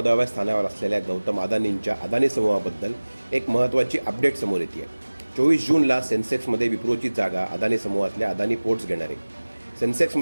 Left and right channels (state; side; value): inverted; both; correlation -1.00